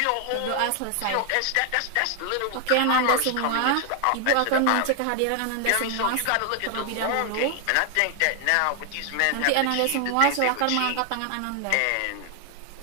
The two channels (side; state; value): both; different; correlation 0.00